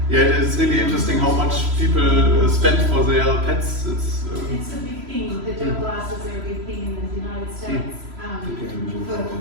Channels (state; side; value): late; left; 3.0 ms